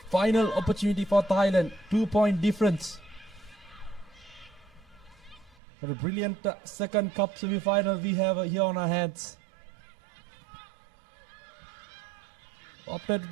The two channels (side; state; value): left; drops out; at 5.6 s